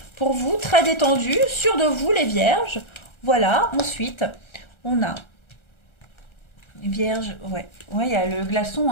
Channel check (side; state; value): right; late; 1.3 ms